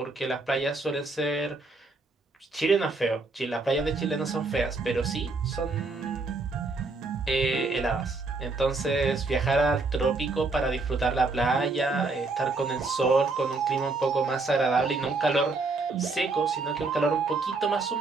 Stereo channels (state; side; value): quieter; left; 3.6 dB